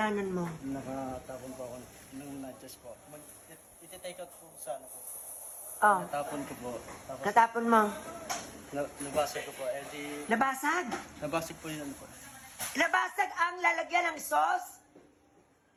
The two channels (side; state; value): both; identical; correlation 1.00